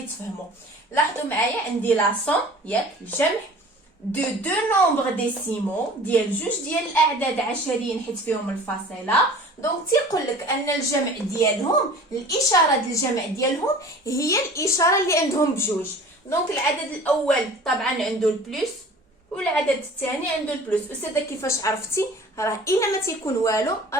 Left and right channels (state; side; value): normal; both; correlation 0.44